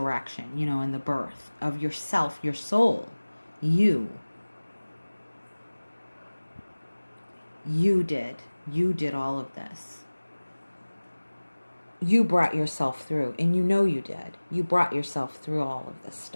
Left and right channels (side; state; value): both; inverted; correlation -1.00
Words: and the birth of yourself, your soul. You did. You did all of this. You brought yourself through, and you did. You brought yourself through all of this